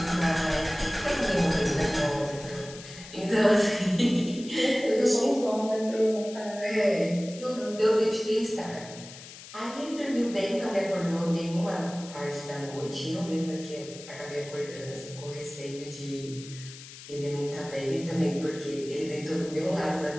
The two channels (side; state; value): left; noise; hiss, 15 dB below the sound